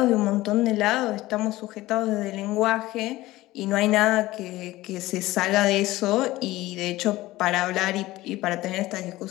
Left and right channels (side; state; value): right; quieter; 17.7 dB